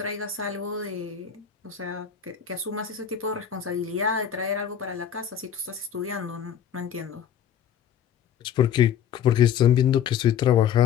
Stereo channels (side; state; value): right; quieter; 8.9 dB